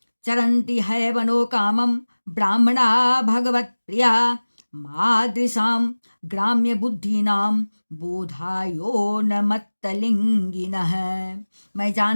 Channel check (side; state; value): both; inverted; correlation -1.00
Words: चरंती है वनो कामम ब्राह्मणा भगवत प्रिया मादृशाम ग्राम्य बुद्धिनाम बोधायो न मत्तलिंगिनः। मैं